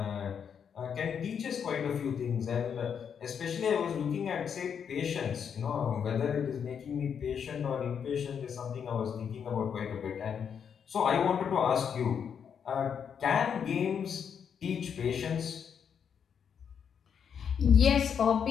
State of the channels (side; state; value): right; quieter; 7.5 dB